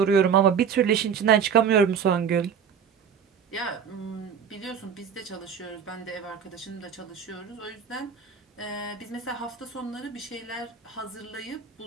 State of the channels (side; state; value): left; quieter; 7.2 dB